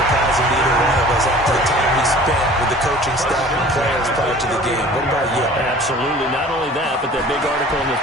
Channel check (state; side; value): normal; both; correlation 0.46